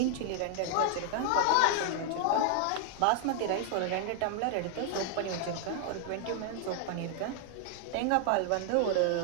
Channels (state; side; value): different; both; correlation 0.00